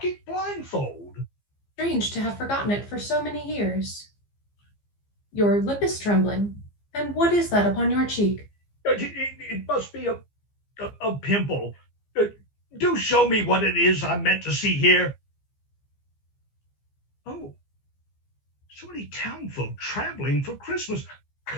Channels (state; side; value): late; right; 15 ms